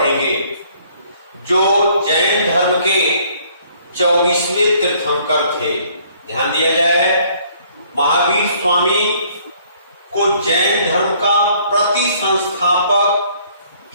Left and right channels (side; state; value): both; inverted; correlation -0.61